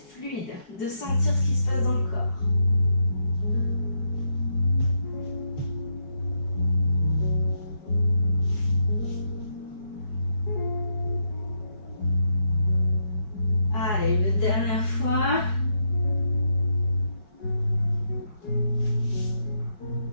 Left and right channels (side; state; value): right; late; 4.8 ms